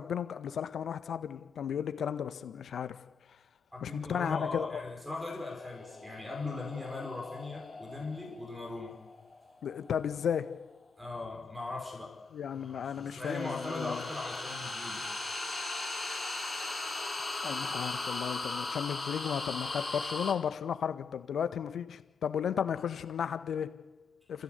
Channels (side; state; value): right; quieter; 5.5 dB